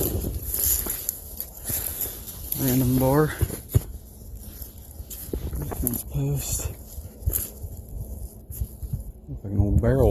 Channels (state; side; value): identical; both; correlation 1.00